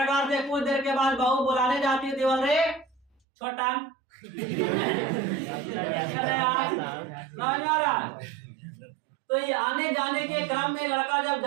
से कुछ देर के बाद बहू बुलाने जाती थी, बोल रहे छोटा समझ में आ रहा है। तो ये आने जाने के क्रम में लड़का जब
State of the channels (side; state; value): left; drops out; at 3.1 s